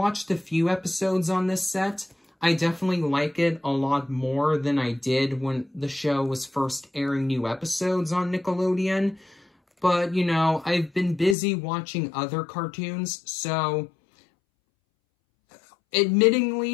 a few episodes on this set. I definitely like it a lot more than I did when the show was first airing new episodes on Nickelodeon. But, you know, I've been busy watching other cartoons, so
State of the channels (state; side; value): drops out; right; at 11.4 s